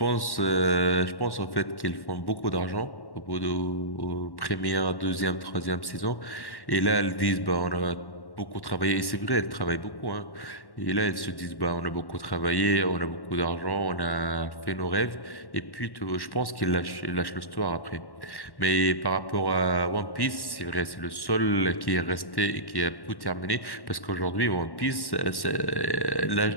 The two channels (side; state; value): right; late; 1.1 ms